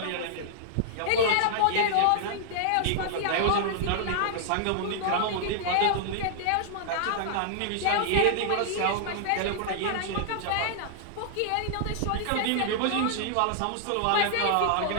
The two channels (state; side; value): different; both; correlation -0.01